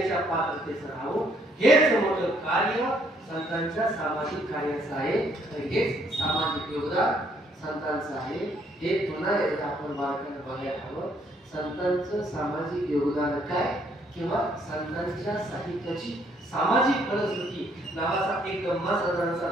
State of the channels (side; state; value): both; normal; correlation 0.68